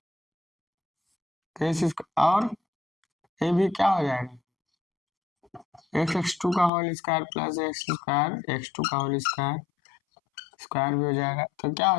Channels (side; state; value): right; drops out; at 6.7 s